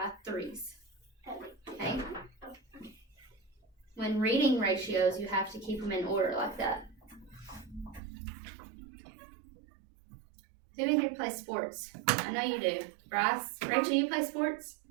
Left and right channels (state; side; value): drops out; left; at 8.0 s